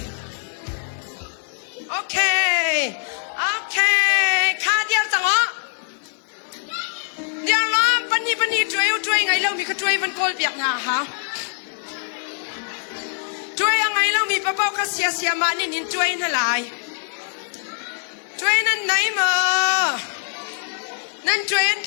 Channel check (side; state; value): right; silent; 58 dB below the other